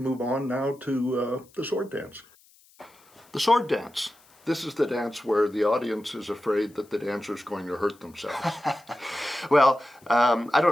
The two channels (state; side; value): noise; left; hiss, 29 dB below the sound